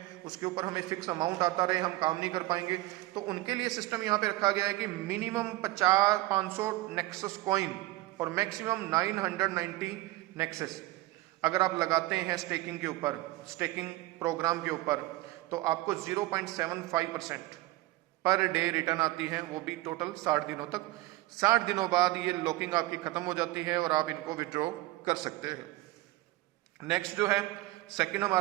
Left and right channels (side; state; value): left; quieter; 18.9 dB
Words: उसके ऊपर हमें फिक्स अमाउंट आता रहे, हम काम नहीं कर पाएंगे। तो उनके लिए सिस्टम यहाँ पे रखा गया है कि मिनिमम 500 नेक्सस कॉइन और मैक्सिमम 990 नेक्सस अगर आप लगाते हैं स्टेकिंग के ऊपर, स्टेकिंग प्रोग्राम के ऊपर, तो आपको 0.75% पर डे रिटर्न आती है, वो भी टोटल 60 दिनों तक। 60 दिनों बाद ये लॉकिंग आपकी खत्म हो जाती है और आप इनको विड्रॉ कर सकते हैं। नेक्स्ट जो है सेकंड